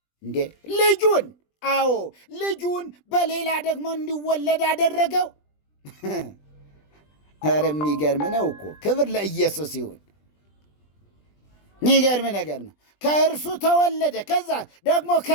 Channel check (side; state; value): right; late; 20 ms